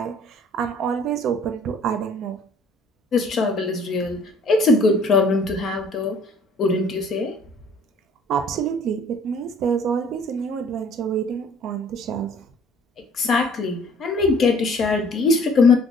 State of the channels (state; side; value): normal; both; correlation 0.55